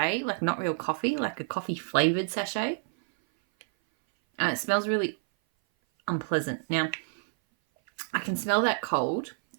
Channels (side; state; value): left; silent; 57 dB below the other